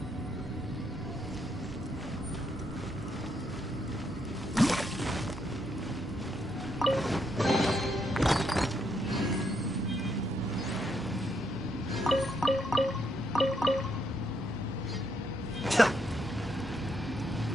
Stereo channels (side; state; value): both; normal; correlation 0.76